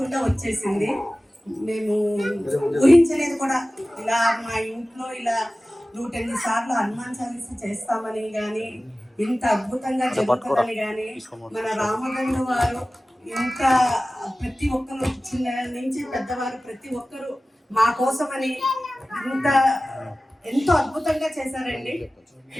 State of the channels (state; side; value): normal; both; correlation 0.96